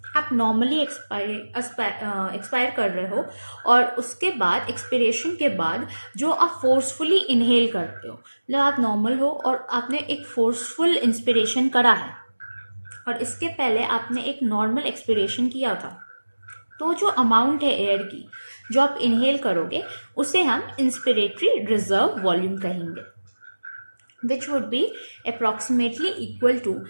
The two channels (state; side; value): inverted; both; correlation -1.00